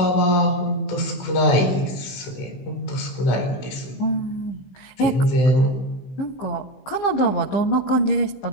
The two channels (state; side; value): late; right; 15 ms